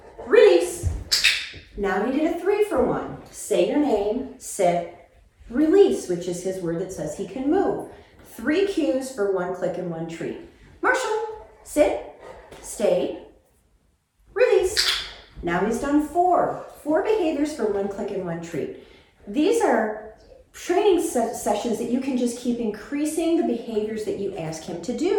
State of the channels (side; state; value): both; identical; correlation 1.00